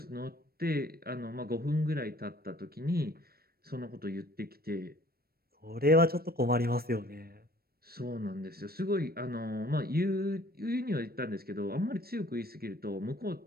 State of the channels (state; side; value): late; left; 0.44 ms